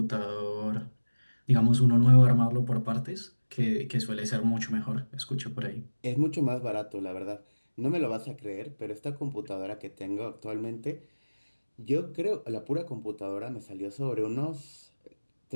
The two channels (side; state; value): both; inverted; correlation -1.00